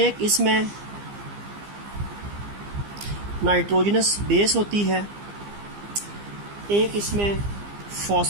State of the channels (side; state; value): left; late; 15 ms